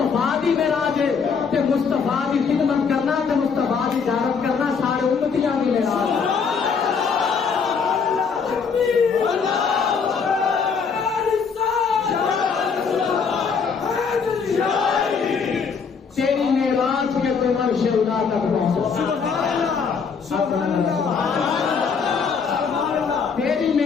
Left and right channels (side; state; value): right; quieter; 5.8 dB